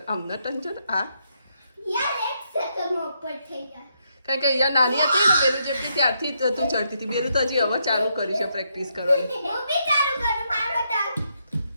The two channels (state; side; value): inverted; both; correlation -0.78